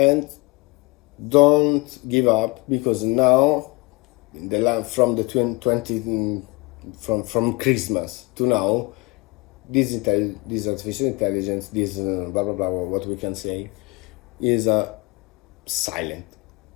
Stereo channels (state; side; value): quieter; right; 26.1 dB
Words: don't give up, because now from the 20 from Christmas to now, this artificial intelligence, this blah blah blah, what we can say, is silent.